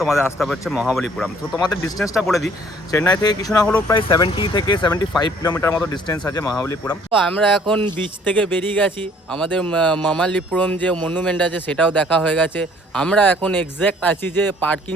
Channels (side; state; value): both; normal; correlation 0.58